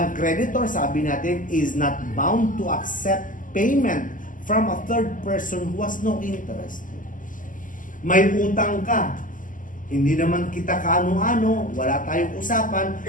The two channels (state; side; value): late; right; 0.38 ms